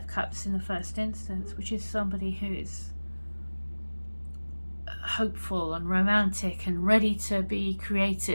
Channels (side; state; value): both; inverted; correlation -1.00